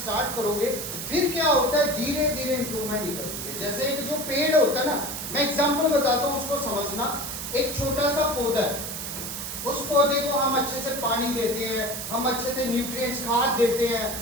करोगे, फिर क्या होता है, धीरे धीरे इंप्रूवमेंट निकलती है। जैसे एक जो पेड़ होता है ना, मैं एग्जांपल बताता हूँ, उसको समझना। एक छोटा सा पौधा है, उस पौधे को हम अच्छे से पानी देते हैं, हम अच्छे से न्यूट्रिएंट्स खाद देते हैं,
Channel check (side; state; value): right; noise; hiss, 6 dB below the sound